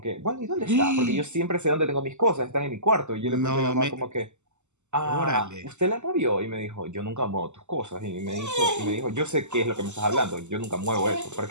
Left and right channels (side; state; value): left; late; 0.83 ms